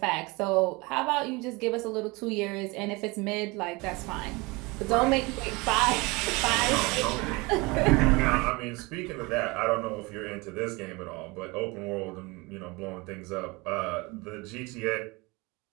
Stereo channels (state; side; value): quieter; left; 25.1 dB